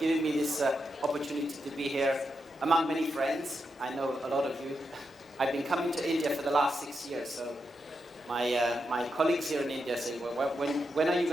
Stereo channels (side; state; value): both; normal; correlation 0.85